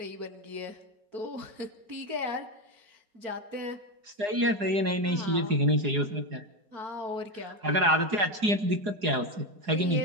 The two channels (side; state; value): left; late; 4.8 ms